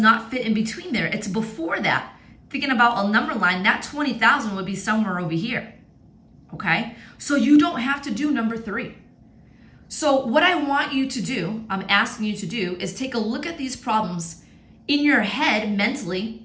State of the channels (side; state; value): both; identical; correlation 1.00